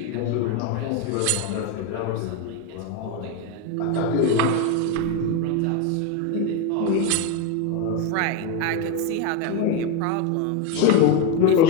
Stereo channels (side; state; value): both; different; correlation 0.03